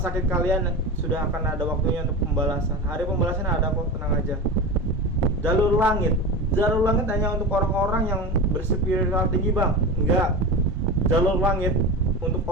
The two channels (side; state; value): both; normal; correlation 0.27